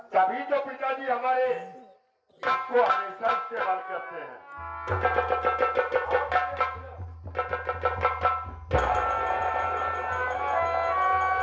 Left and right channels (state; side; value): identical; both; correlation 1.00